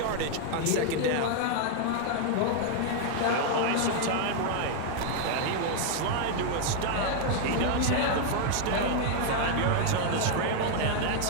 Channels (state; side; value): different; both; correlation 0.00